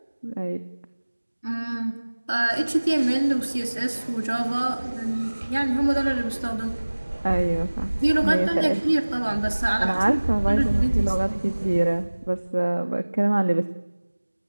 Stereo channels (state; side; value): inverted; both; correlation -1.00